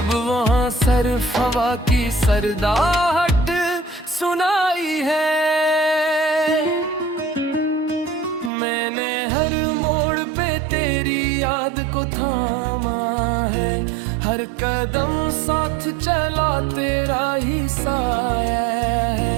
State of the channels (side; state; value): left; drops out; at 8.5 s